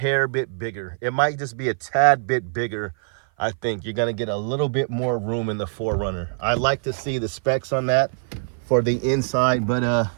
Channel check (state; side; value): silent; left; 56 dB below the other